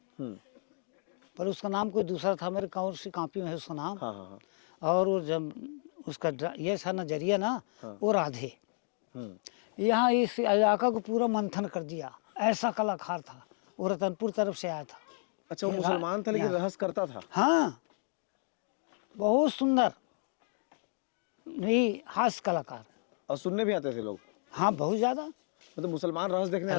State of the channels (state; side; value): silent; right; 56 dB below the other